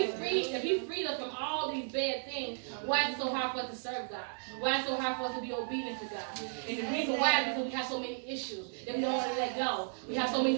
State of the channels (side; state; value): left; silent; digital silence